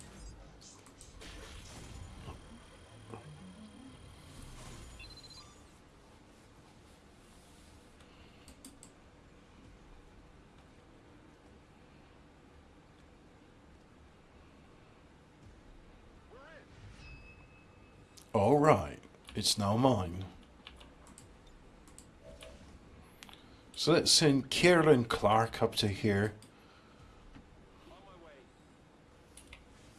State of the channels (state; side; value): identical; both; correlation 1.00